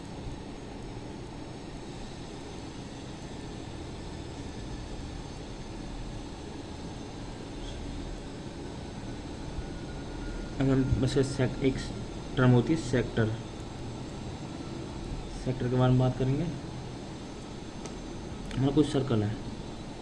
अगर बस एक टर्म होती है सेक्टर, सेक्टर के बारे में बात करेंगे। हमारा कुछ सर्कल है,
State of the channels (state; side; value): identical; both; correlation 1.00